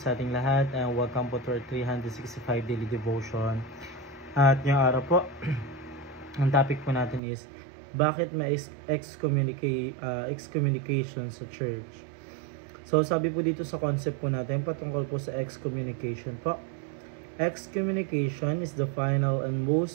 ating lahat and welcome po to our 365 daily devotion. At ngayong araw po, ang topic po natin is bakit may excommunication sa church. So sabi po dito sa concept po natin patungkol po sa excommunication po. Excommunication is the final and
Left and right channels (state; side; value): drops out; left; at 7.2 s